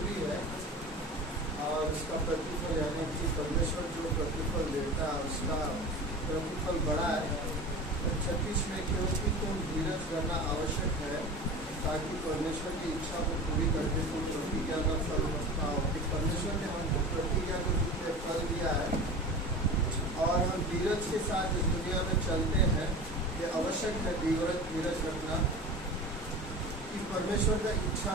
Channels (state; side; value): normal; both; correlation 0.34